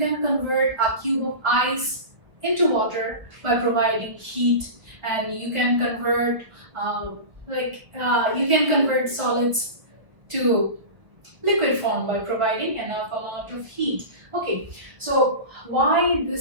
convert a cube of ice into water by providing heat, and you can convert you can convert solids to liquid form by providing enough amount of heat. Okay, so why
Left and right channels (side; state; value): left; late; 1.1 ms